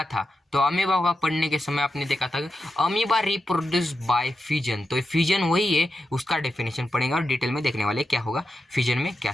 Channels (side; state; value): both; normal; correlation 0.88